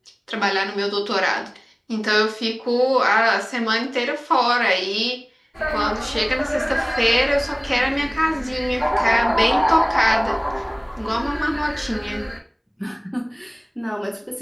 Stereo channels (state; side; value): identical; both; correlation 1.00